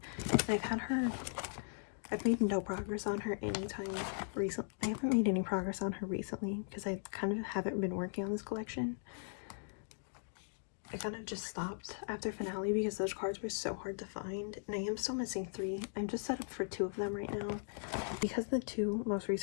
I've made no progress on her anytime recently. I haven't made any progress on her recently because I kind of haven't been working on this collection. I kind of just stopped after finale because those cards were so hard to find, and I am still missing 3. I'm just set up for 2 of them right now because the 2 most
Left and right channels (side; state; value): right; silent; digital silence